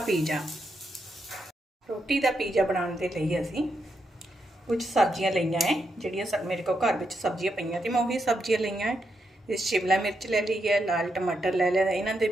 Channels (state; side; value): normal; both; correlation 0.82